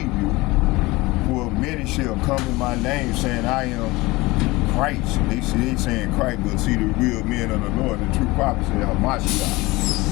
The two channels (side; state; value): right; quieter; 21.6 dB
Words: you, for many shall come in my name, saying, I am Christ. They saying Christ, but see, the real men of the Lord, the true prophets, say Hamashiach.